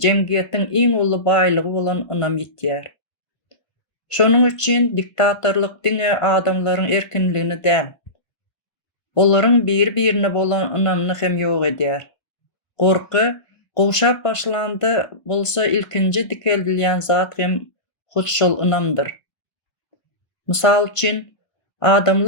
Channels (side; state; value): right; late; 1.5 ms